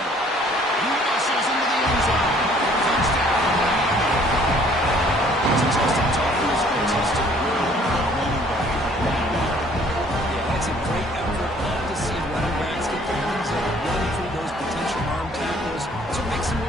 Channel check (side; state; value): both; normal; correlation 0.58